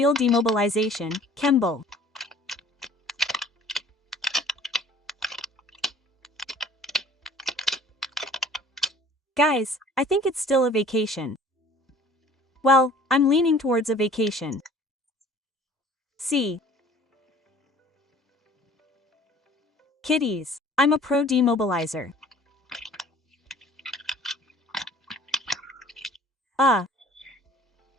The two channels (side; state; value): both; normal; correlation 0.51